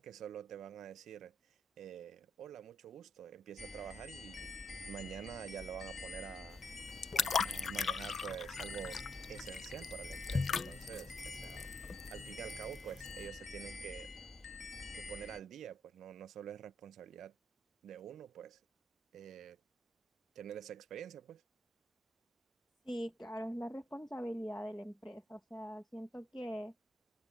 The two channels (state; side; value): normal; both; correlation 0.79